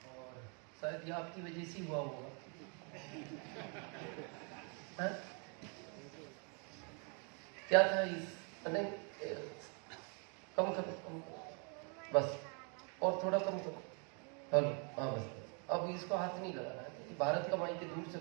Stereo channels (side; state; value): left; quieter; 37.2 dB